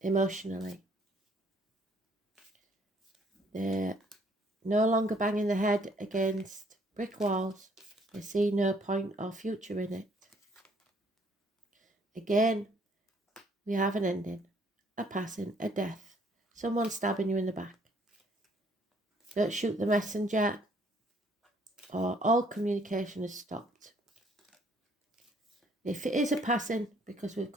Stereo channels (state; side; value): normal; both; correlation 0.63